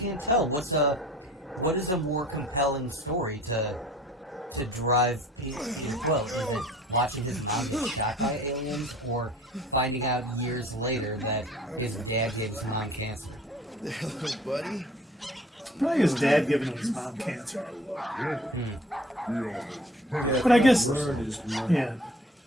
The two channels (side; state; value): both; normal; correlation 0.49